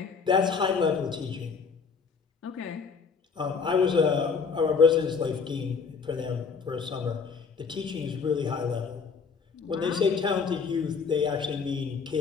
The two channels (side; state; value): right; quieter; 5.4 dB